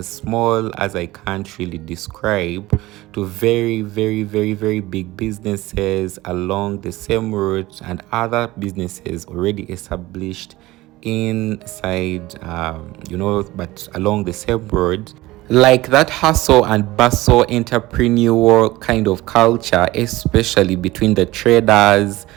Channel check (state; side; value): quieter; left; 18.6 dB